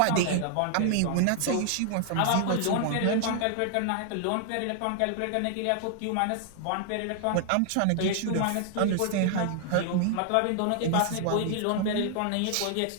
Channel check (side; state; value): both; different; correlation 0.00